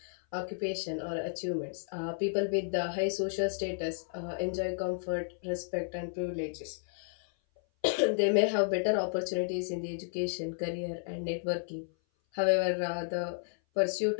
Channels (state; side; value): silent; right; 56 dB below the other